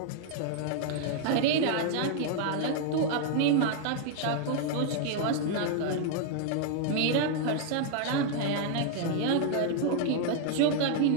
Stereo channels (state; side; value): different; both; correlation 0.00